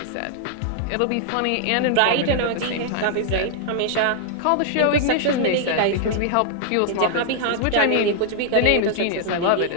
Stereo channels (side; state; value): both; different; correlation -0.01